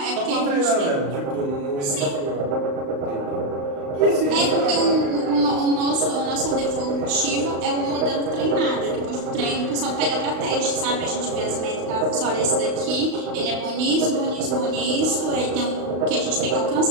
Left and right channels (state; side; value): late; left; 35 ms